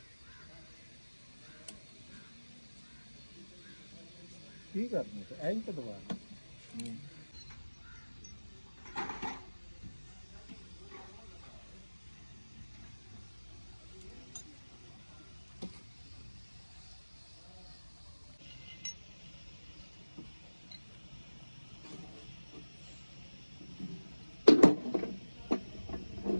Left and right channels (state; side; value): inverted; both; correlation -1.00